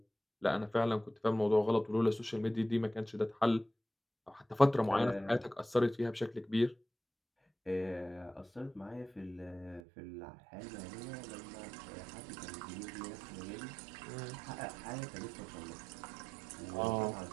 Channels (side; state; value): left; drops out; at 9.8 s